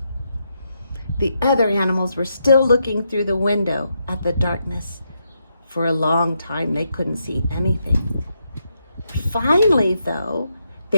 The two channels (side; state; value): both; inverted; correlation -0.81